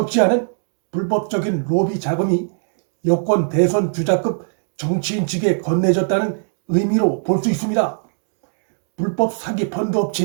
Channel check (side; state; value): left; silent; digital silence